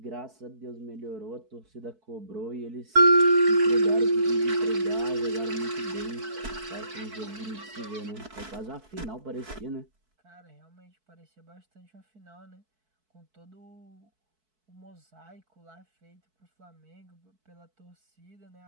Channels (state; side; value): late; left; 4.6 ms